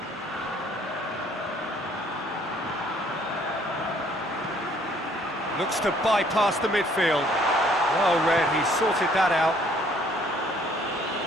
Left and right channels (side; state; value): both; normal; correlation 0.61